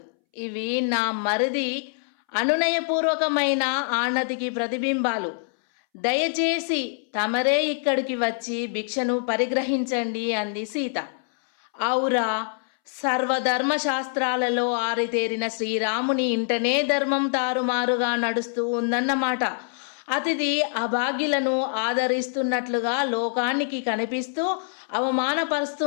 ఇవి నా మరిది అనునయపూర్వకమైన ఆనతికి ప్రతిబింబాలు. దయచేసి తమరే ఇక్కడికి వచ్చి భిక్షను పరిగ్రహించండి అంది సీత. ఔరా, సర్వధర్మ శాస్త్రాలలో ఆరితేరిన శ్రీరాముని ఇంటనే ధర్మం తారుమారుగా నడుస్తూ ఉందన్నమాట. అతిథి అభాగ్యులను ఆదరిస్తున్నట్లుగా లోకానికి కనిపిస్తూ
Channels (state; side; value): silent; right; 62 dB below the other